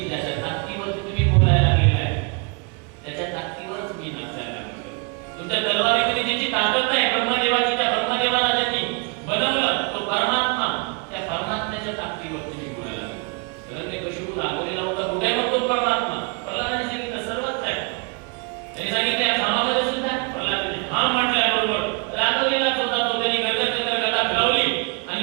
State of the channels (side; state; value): left; quieter; 33.2 dB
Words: ज्याच्या ताकदीवर तुम्ही बोलायला लागलेला आहे त्याच्या ताकदीवरच मी नाचायला लागलो. तुमच्या तलवारीमध्ये ज्याची ताकद नाही ब्रह्मदेवाची, त्या ब्रह्मदेवाला ज्यांनी बनवलं तो परमात्मा, त्या परमात्म्याच्या ताकदीवर तुम्ही बोलायला लागलो. हिरण्यकशिपू रागवलेला होता. कुठे मग तो परमात्मा? प्रल्हादाने सांगितलं सर्वच आहे. त्यांनी सांगितलं या खामामध्ये सुद्धा. प्रल्हादाने हा म्हटल्याबरोबर रागवलेलाच होता तो. त्यांनी गदा फिरवली आणि